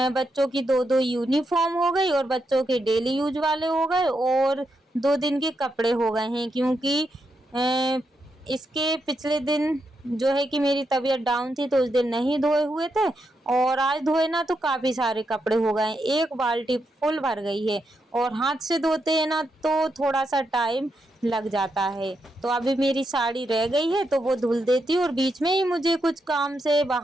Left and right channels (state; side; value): normal; both; correlation 0.83